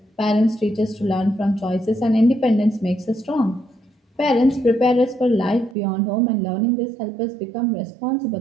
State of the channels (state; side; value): drops out; left; at 5.8 s